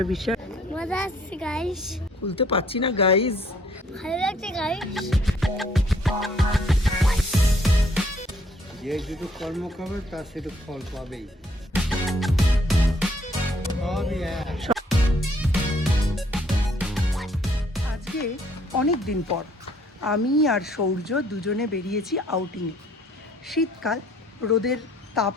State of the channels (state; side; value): normal; both; correlation 0.63